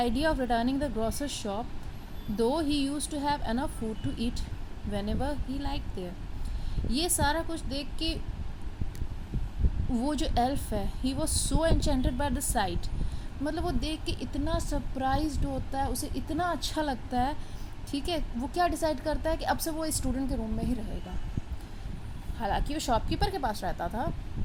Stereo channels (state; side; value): identical; both; correlation 1.00